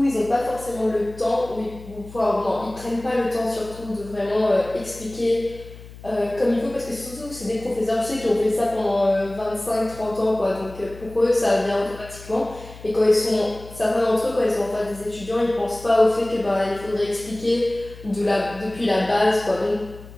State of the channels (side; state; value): left; noise; hum, 17 dB below the sound